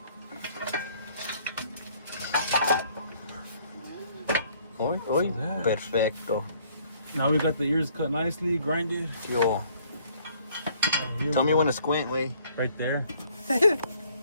Oi, oi, perfecto. Now we got the ears cut nicely, grinded. Yo, tell me when to squint, way. Right there. Hey,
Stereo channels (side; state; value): both; inverted; correlation -0.62